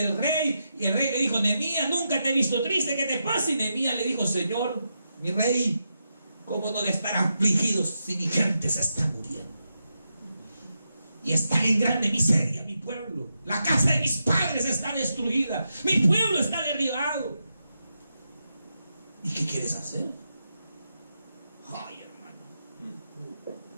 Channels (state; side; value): inverted; both; correlation -0.86